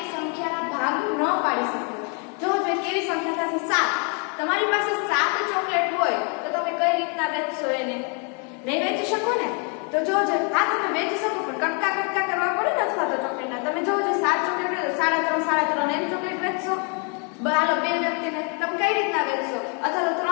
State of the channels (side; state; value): right; quieter; 37.8 dB